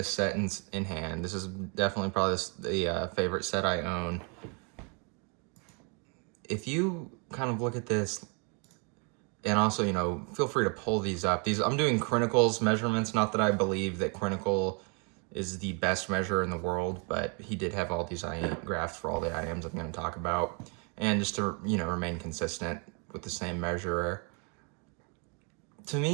set in hand. This is definitely probably the favorite set I own. If you kind of look at this, and also, feel free to pull these up. I'm doing Crinical's measurements. Not that I believe that Crinical is the best measure in the world, but he did have all these IEM graphs for all the IEMs I'm going to talk about. And just to, remain consistent with the same measurer. To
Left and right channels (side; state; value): left; quieter; 36.1 dB